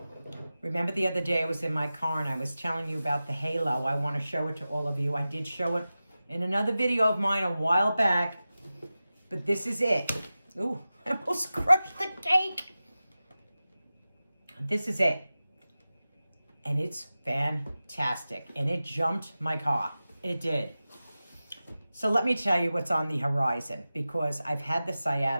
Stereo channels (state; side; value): inverted; both; correlation -0.95